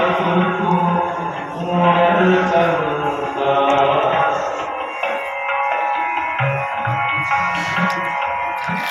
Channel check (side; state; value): both; identical; correlation 1.00